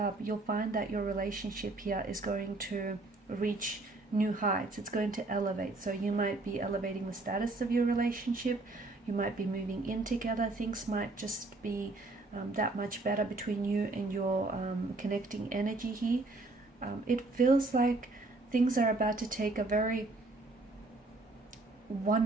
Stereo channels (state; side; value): quieter; left; 3.1 dB